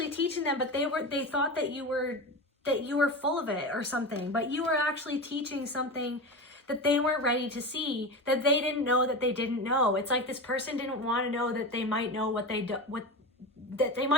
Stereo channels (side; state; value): both; normal; correlation 0.24